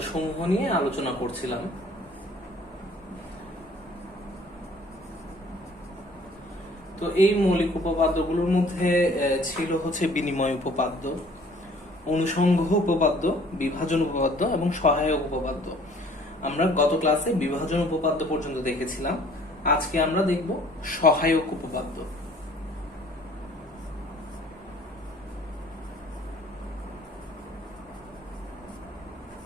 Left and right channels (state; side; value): normal; both; correlation 0.55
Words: সমূহ নিয়ে আলোচনা করছিলাম। তো এই মৌলিক উপপাদ্যগুলোর মধ্যে ছিল হচ্ছে বিনিময় উপপাদ্য, অনুসংঘ উপপাদ্য, বিভাজন উপপাদ্য এবং সহায়ক উপপাদ্য। আমরা গত ক্লাসে বিভাজন উপপাদ্য পর্যন্ত দেখেছিলাম। আজকে আমরা দেখব সহায়ক উপপাদ্য।